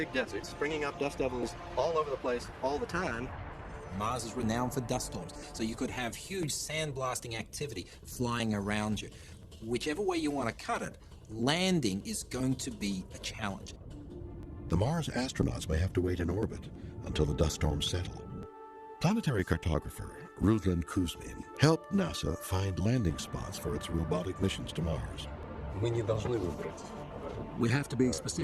desert, springing up dust devils all over the place all the time. Mars is renowned for dust storms, so you could have huge sandblasting activity flying around you. Whichever way you want to cut it, landing is going to be a challenge. The Mars astronauts may have to wait in orbit until the dust storms settle. Planetary cartographer Ruslan Kuzmin helped NASA find landing spots for its robotic missions to Mars. We have to be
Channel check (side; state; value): both; identical; correlation 1.00